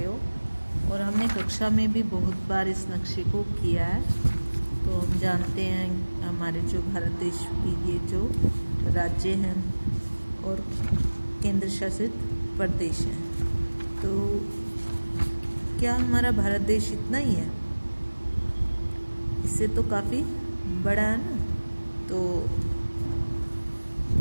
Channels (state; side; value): inverted; both; correlation -1.00